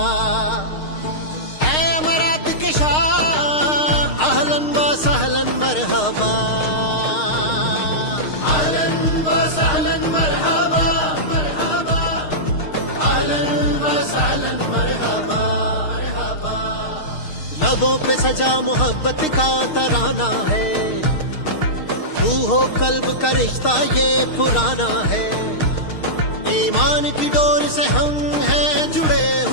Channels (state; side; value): late; right; 6.5 ms